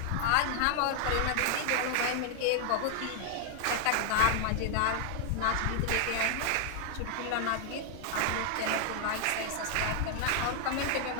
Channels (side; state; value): both; different; correlation 0.00